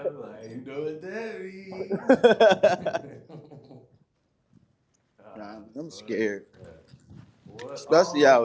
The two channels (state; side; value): identical; both; correlation 1.00